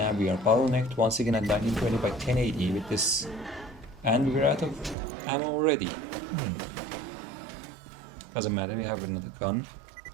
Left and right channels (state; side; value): drops out; left; at 5.0 s